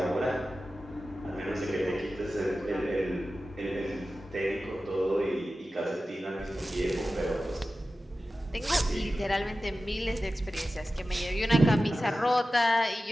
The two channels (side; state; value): both; normal; correlation 0.94